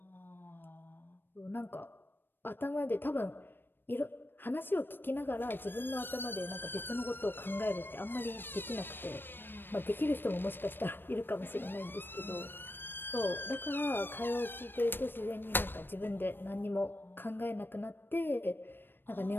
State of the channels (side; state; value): right; late; 0.097 ms